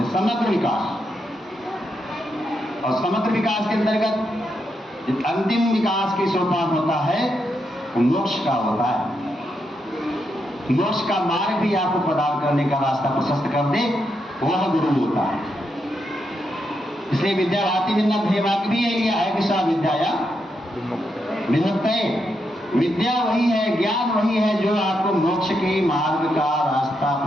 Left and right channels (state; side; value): normal; both; correlation 0.82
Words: समग्र विकास। और समग्र विकास के अंतर्गत अंतिम विकास की सोपान होता है मोक्ष का होता है। मोक्ष का मार्ग भी आपको प्रदान करने का रास्ता प्रशस्त कर दे, वह गुरु होता है। इसलिए विद्या भाति विद्या भी यही लिया है कि सा विद्या विमुक्तये। विद्या वही है, ज्ञान वही है जो आपको मोक्ष के मार्ग का रास्ता